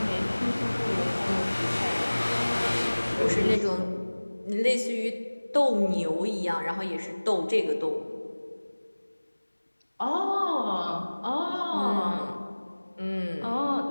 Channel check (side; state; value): both; inverted; correlation -1.00